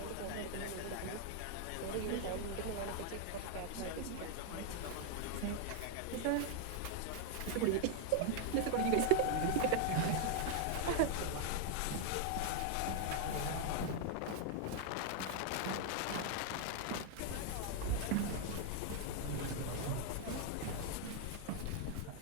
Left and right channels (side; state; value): both; different; correlation 0.00